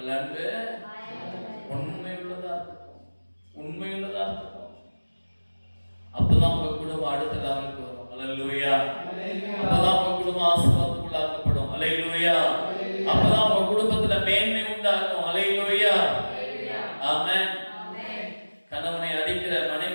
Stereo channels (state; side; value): inverted; both; correlation -1.00